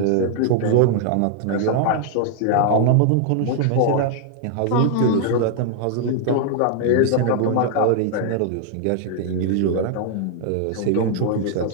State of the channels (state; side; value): different; both; correlation 0.00